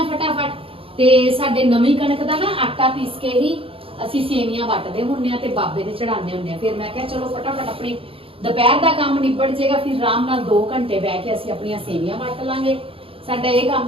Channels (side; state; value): left; late; 0.27 ms